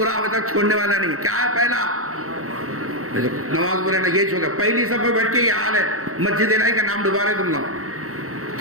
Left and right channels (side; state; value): left; late; 0.64 ms